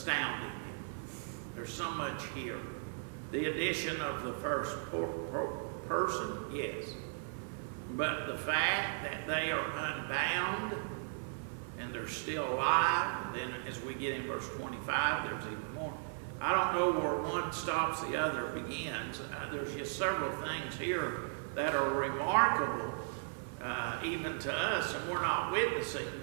There's so much here. The addition of the first person, yes. But the fact that they are unbound and they're still alive, and then as we get in verse 25, there's even more. I don't know where one stops, the other begins. There's just several things here that are remarkable, even to us, and we're not witnessing,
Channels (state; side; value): silent; left; 53 dB below the other